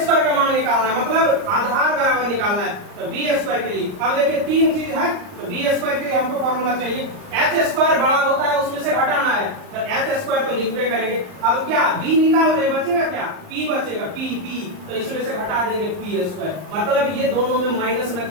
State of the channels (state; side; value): late; left; 39 ms